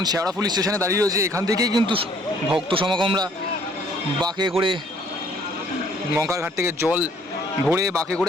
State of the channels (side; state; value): both; normal; correlation 0.61